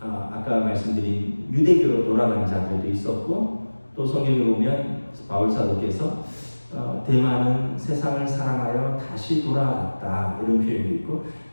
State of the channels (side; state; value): both; inverted; correlation -1.00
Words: 말씀드린 유대교로 돌아간 자들도 있었고, 또 성경에 보면 바울 사도께서 대만은 세상을 사랑하여 다시 돌아갔다 이런 표현도 있고,